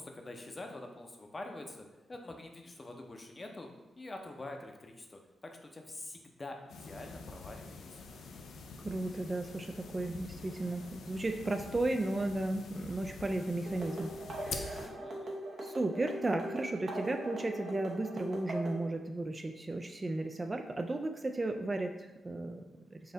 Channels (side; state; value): both; normal; correlation 0.92